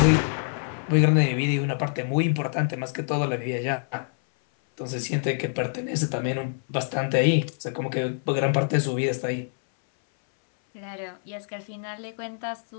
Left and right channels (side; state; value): right; silent; 61 dB below the other